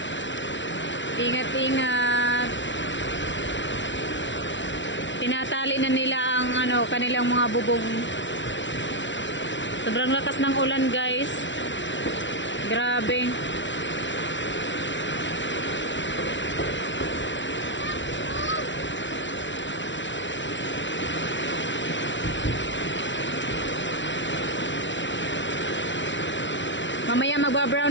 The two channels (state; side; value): late; right; 0.54 ms